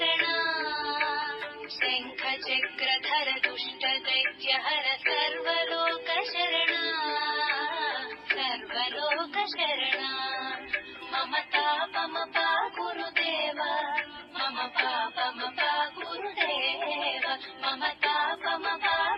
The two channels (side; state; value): both; identical; correlation 1.00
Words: शङ्खचक्रधर दुष्ट दैत्यहर सर्वलोकशरणा सर्वलोकशरणा मम तापमपा गुरुदेव मम पापमपा गुरुदेव मम तापमपा